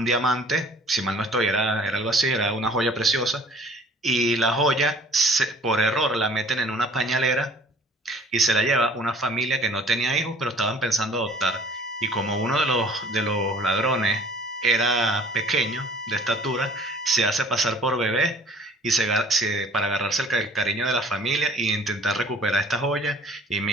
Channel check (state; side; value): normal; both; correlation 0.52